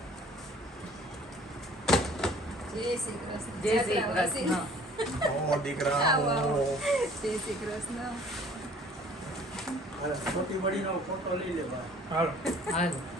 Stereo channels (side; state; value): both; normal; correlation 0.53